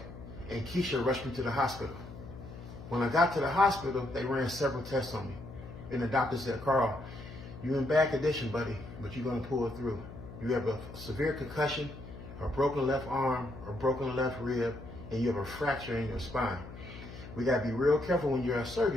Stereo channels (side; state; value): left; noise; hum, 13 dB below the sound